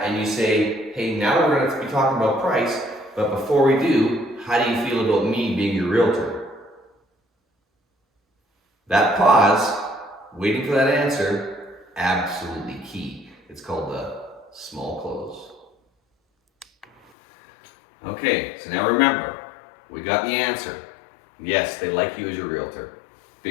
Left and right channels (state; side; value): drops out; right; at 17.1 s